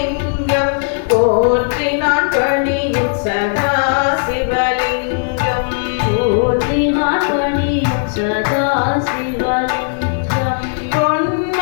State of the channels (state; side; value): silent; right; 59 dB below the other